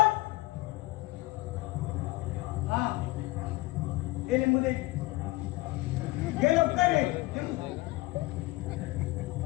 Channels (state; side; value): quieter; right; 20.1 dB